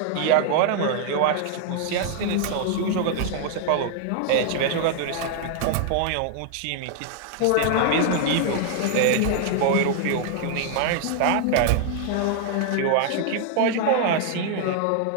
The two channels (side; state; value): both; different; correlation -0.01